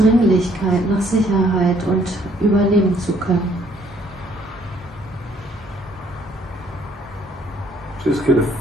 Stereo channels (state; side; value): normal; both; correlation 0.64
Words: nach Sicherheit und überleben zu können. Just get a